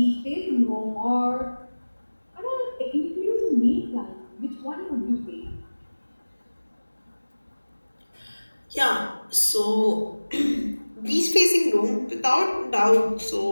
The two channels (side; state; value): both; inverted; correlation -1.00